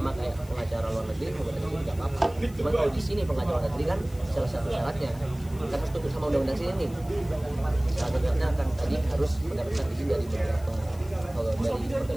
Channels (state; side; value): noise; left; hiss, 23 dB below the sound